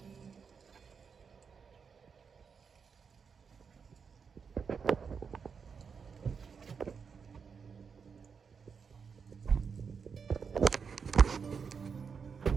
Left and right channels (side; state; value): left; quieter; 6.0 dB